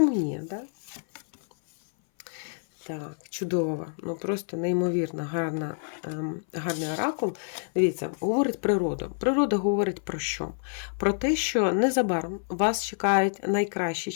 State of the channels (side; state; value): right; silent; 58 dB below the other